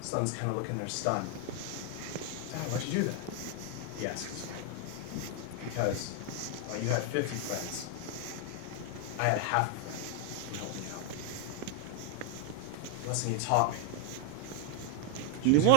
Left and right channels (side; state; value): both; different; correlation 0.01